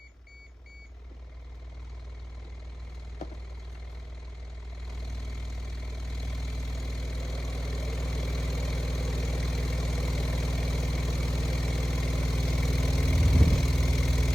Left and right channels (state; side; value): normal; both; correlation 0.97